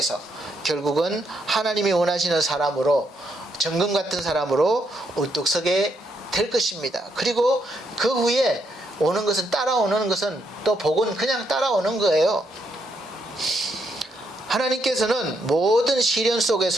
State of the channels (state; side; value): normal; both; correlation 0.76